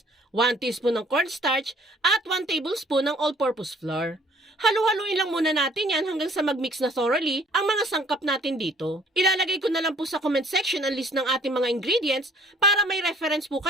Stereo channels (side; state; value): both; normal; correlation 0.57